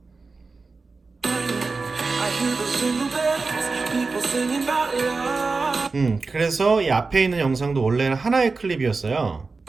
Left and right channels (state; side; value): quieter; left; 4.1 dB